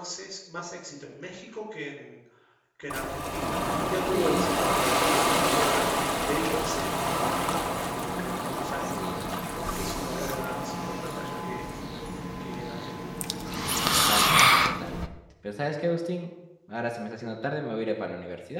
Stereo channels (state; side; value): identical; both; correlation 1.00